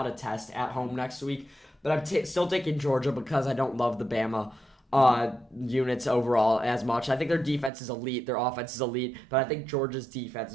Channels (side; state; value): left; drops out; at 7.7 s